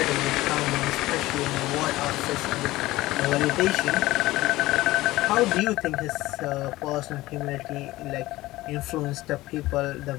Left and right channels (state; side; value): quieter; right; 18.0 dB